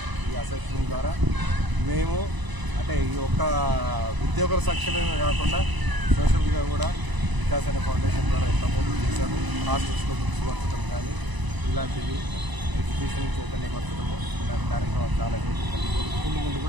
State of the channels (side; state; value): left; late; 1.0 ms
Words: ఈ అసోసియేషన్ ద్వారా మేము అంటే ఈ ఒక్క ఉద్యోగుల సంక్షేమమే కాకుండా సోషల్గా కూడా వికాస్ అనే ఫౌండేషన్ ద్వారా ఎంతమంది చేశాము. హాస్టల్స్లో బుక్స్ పంచడం కానీ ఇలాంటివి ఎడ్యుకేషన్ చైతన్యపరచడము ఇలాంటి కార్యక్రమాలు చాలా ముందు